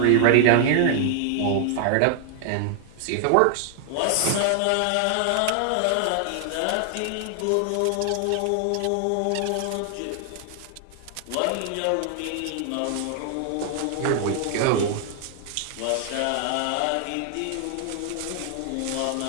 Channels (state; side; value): different; both; correlation 0.00